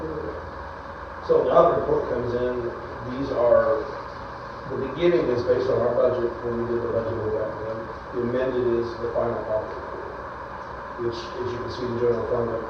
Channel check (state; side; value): identical; both; correlation 1.00